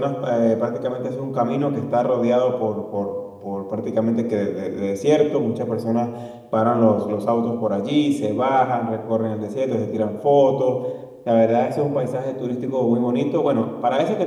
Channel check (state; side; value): identical; both; correlation 1.00